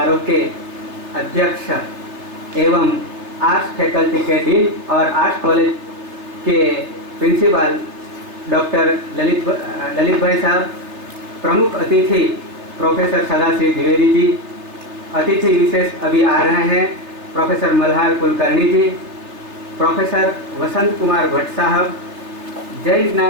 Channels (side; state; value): left; late; 3.3 ms